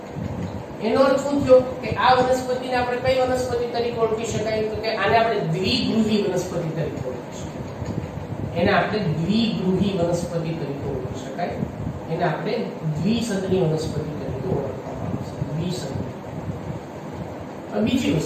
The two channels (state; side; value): identical; both; correlation 1.00